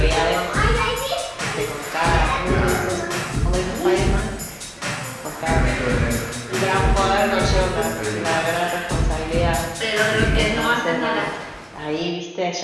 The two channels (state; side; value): identical; both; correlation 1.00